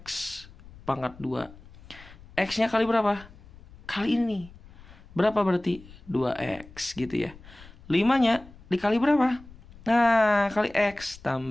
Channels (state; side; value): noise; left; rumble, 21 dB below the sound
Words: pangkat 2. X-nya kali berapa? Kali ini. Berapa berarti? 2X gitu ya. 5-nya dikali berapa? Nah, kali X